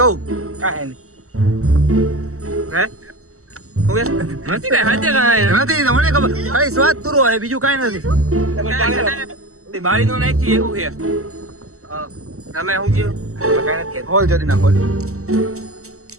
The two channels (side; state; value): left; late; 0.64 ms